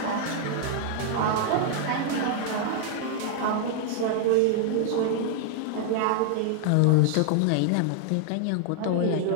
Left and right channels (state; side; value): different; both; correlation 0.00